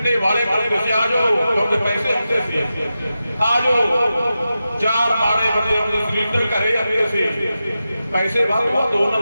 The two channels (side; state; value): both; inverted; correlation -0.91